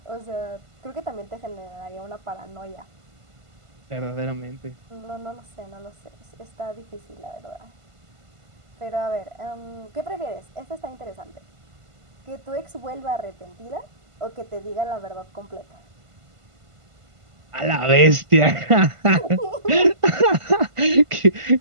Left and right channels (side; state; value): left; late; 1.5 ms